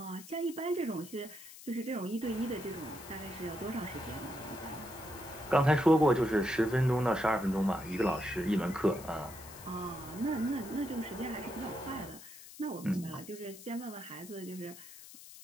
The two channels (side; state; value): left; noise; hiss, 16 dB below the sound